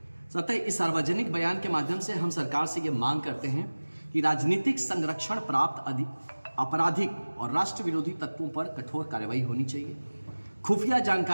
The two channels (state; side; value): inverted; both; correlation -1.00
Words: अतः इस सार्वजनिक बयान के माध्यम से हम सरकार से यह मांग करते हैं कि राजनीतिक संरक्षण प्राप्त आपराधिक और राष्ट्र विरोधी तत्वों पर कठोर कार्रवाई होनी चाहिए। खुफिया